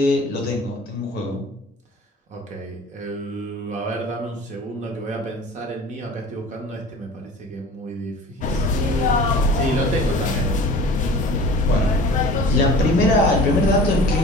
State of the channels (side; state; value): both; normal; correlation 0.42